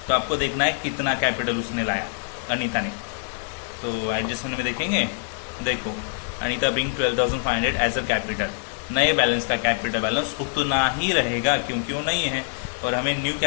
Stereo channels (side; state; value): right; silent; 62 dB below the other